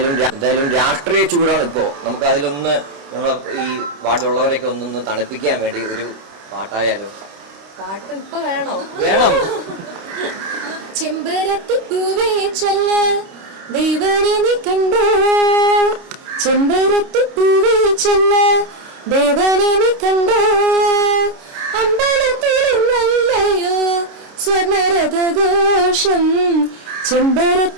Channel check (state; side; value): late; left; 29 ms